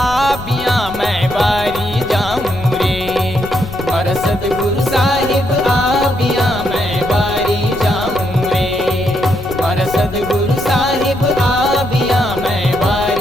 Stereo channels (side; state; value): left; noise; rumble, 13 dB below the sound